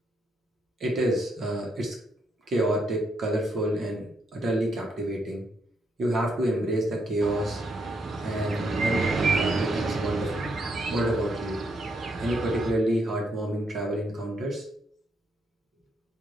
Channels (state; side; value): normal; both; correlation 0.76